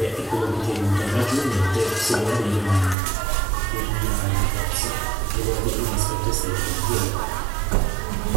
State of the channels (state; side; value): drops out; left; at 3.0 s